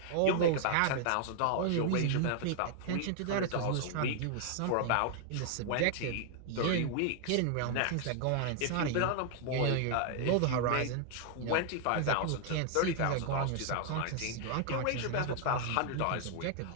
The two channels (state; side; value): different; both; correlation 0.00